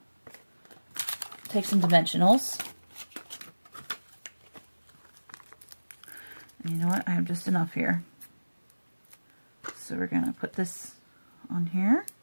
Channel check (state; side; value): inverted; both; correlation -1.00